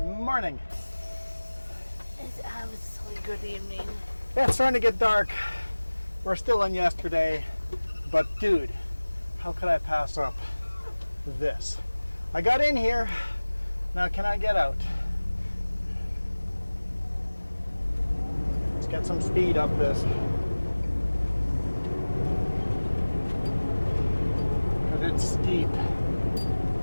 morning. It's absolutely good evening. Yeah, it's starting to get dark. We're still in yesterday, but dude, how could I pass up this? I got in here, now can I get out? Let's get some speed up this. But it's steep.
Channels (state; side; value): inverted; both; correlation -1.00